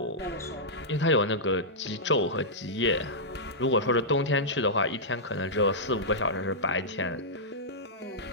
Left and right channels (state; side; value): normal; both; correlation -0.11